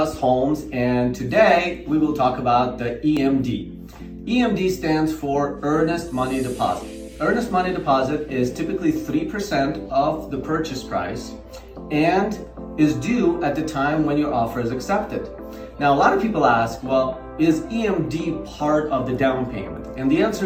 Homes, and today we will talk about the EMD. EMD stands for Earnest Money Deposit. Earnest Money Deposit is typically 3% of the purchase price and is due at the time when your offer is accepted. Now, a lot of people ask, well, is EMD part of the down payment? And the answer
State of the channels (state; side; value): identical; both; correlation 1.00